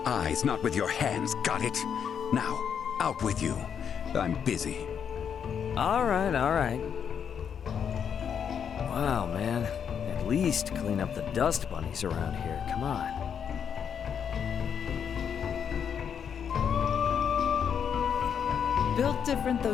eyes, not with your hands, got it? Now, out with you. I'm busy. All right, all right. Wow, man. At least clean up the dust bunnies around here. Come on. Built different though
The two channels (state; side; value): quieter; right; 7.7 dB